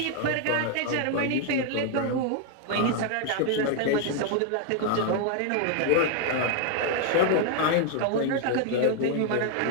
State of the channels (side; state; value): both; different; correlation 0.00